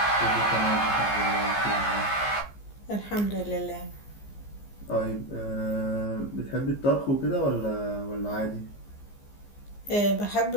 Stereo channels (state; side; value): late; right; 15 ms